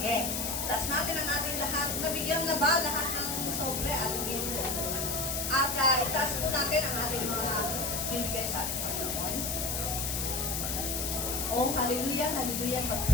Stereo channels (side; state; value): left; noise; hiss, 1 dB below the sound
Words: Taas natin ang ating lahat. Nabigyan na ba lahat ng sobre at ginto? At itaas po natin ang ating mga bibigay sa ating Panginoon. Oh, hallelujah, hallelujah.